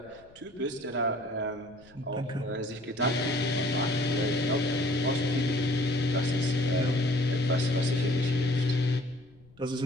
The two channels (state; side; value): noise; left; rumble, 27 dB below the sound